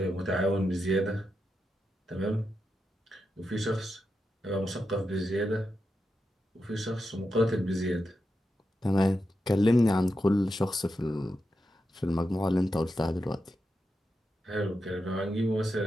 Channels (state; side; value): normal; both; correlation 0.88